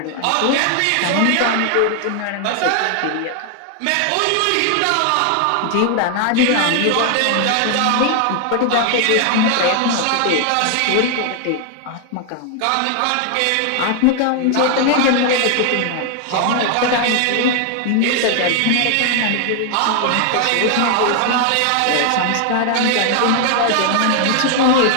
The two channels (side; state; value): both; different; correlation 0.00